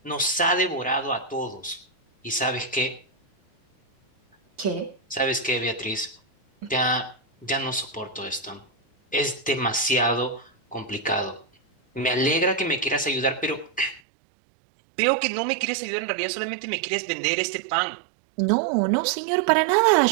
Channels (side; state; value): left; drops out; at 14.0 s